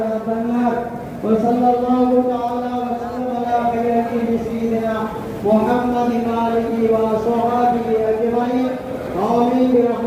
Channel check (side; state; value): both; identical; correlation 1.00